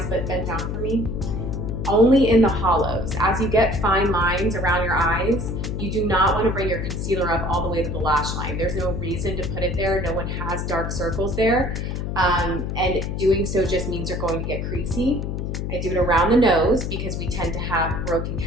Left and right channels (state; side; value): noise; left; hum, 3 dB below the sound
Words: but bend down for me. Only in the hollows. As you get fine lines around your eyes, you do not want to bring your concealer up all the way to the lash line. There's no reason to put it there. No one has dark circles there. And doing so just means you're going to get creasy. I do it around the nose because we tend to have broken